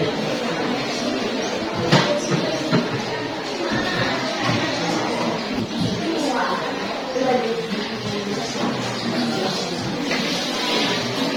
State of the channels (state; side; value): identical; both; correlation 1.00